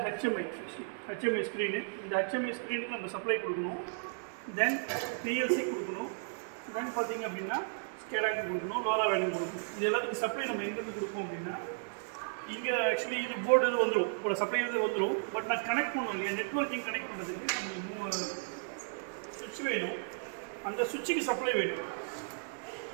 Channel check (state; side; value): silent; left; digital silence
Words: ஹெச்எம்ஐ ஸ்க்ரீனு. இந்த ஹெச்எம்ஐ ஸ்க்ரீனுக்கு நம்ம சப்ளை கொடுக்கணும், தென் பிஎல்சி கொடுக்கணும், தென் பார்த்தீங்க அப்படின்னா ஸ்கேடாக்கு கொடுக்கணும், லோரா வேல்யூ கொடுக்கணும். இது எல்லாத்துக்கும் சப்ளை நம்ம எங்கேருந்து கொடுப்போம் அப்படின்னா இங்கே ஆக்சுவலி இது போர்டு இது வந்துடும், இப்போ சப்ளை இது வந்துடும். பட் நான் கனெக்ட் பண்ணணும் இல்லையா, நெட்வொர்க்கிங் கனெக்ட் பண்ணுறதுக்கு நம்மளுக்கு சுவிட்ச் வேணும், அந்த சுவிட்சுக்கு சப்ளை வேணும்.